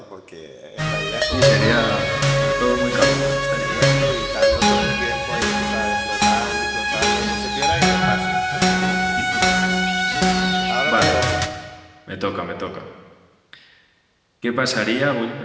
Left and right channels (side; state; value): both; identical; correlation 1.00